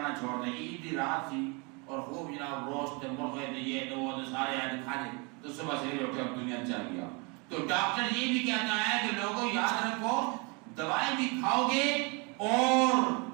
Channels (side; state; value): left; quieter; 30.9 dB